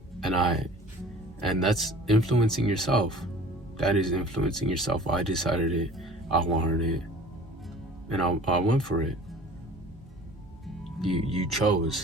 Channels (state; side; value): normal; both; correlation 0.45